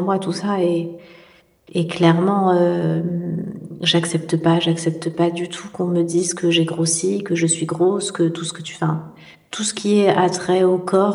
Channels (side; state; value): both; identical; correlation 1.00